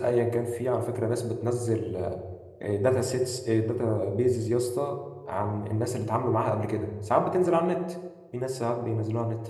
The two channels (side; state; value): both; identical; correlation 1.00